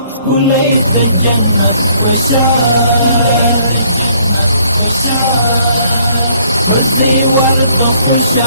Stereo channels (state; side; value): inverted; both; correlation -0.63